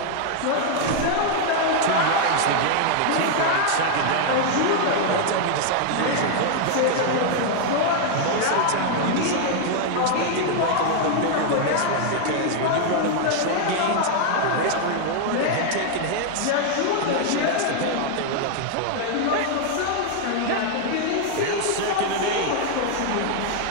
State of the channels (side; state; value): both; different; correlation 0.00